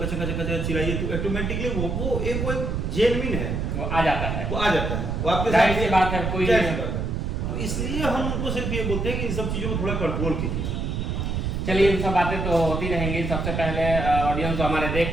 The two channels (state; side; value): noise; right; rumble, 1 dB below the sound